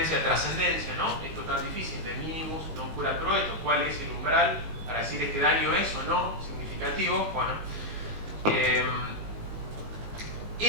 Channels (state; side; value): late; left; 19 ms